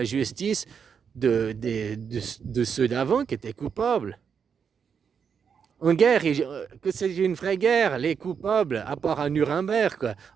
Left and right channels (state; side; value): quieter; left; 6.8 dB